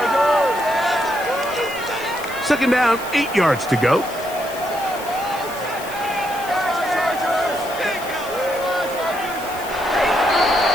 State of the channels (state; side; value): noise; left; hiss, 15 dB below the sound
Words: 2nd down, 8 yards to go.